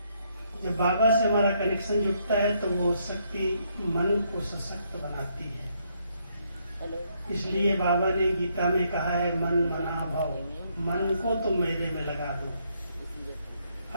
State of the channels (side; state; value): both; inverted; correlation -0.73